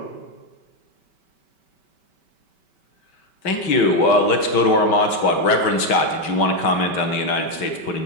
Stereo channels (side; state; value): right; late; 5.2 ms